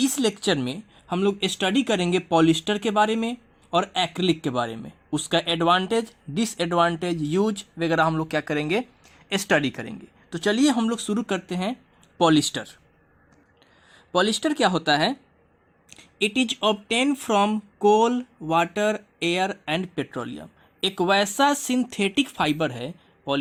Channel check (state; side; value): identical; both; correlation 1.00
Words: लेक्चर में हम लोग स्टडी करेंगे पॉलिस्टर के बारे में और एक्रिलिक के बारे में, उसका एडवांटेज, डिसएडवांटेज, यूज वगैरह हम लोग क्या करेंगे, स्टडी करेंगे। तो चलिए हम लोग शुरू करते हैं। पॉलिस्टर पॉलिस्टर क्या होता है? It is obtain from coal, water, air and petroleum. एक वैसा सिंथेटिक फाइबर है,